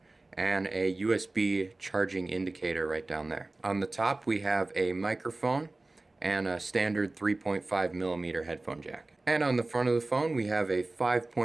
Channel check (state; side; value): quieter; left; 3.0 dB